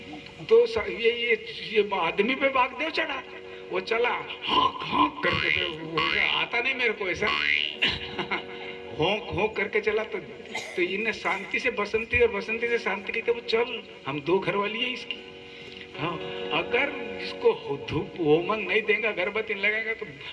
तो ये आदमी पे वागदेव चढ़ा, वो चला हाँक हाँक करके, आता नहीं मेरे को ऐसा, होंक होंक करके चला। तो इन्हें शांति से बसंती और बसंती से शांति की, तो वो चल, हम दो घरवाली है इसकी। हाँ, अगर इसको धूप होमन नहीं देगा, अगरबत्ती लगाएगा, तो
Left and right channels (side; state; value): both; identical; correlation 1.00